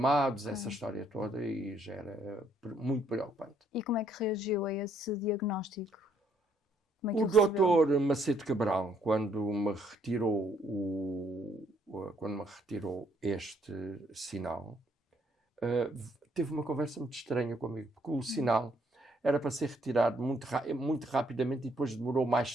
essa história toda, e já era muito preocupante. E como é que reagiu a esse diagnóstico? O doutor Macedo Cabral, quando me retirou este sinal, teve uma conversa muito estranha comigo, porque o sinal era para ser retirado muito rapidamente e depois demorou mais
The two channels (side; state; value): both; normal; correlation 0.69